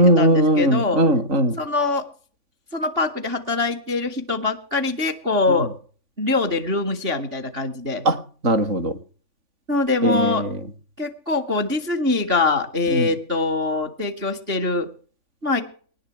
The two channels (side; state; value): left; late; 3.5 ms